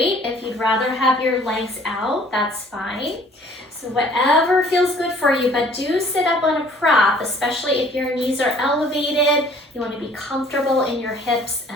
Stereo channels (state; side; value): normal; both; correlation 0.55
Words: If you'd rather have your legs out, that's fine. So whatever feels good for you, but do sit up on a prop, especially if your knees are elevated. You want to be comfortable in your hips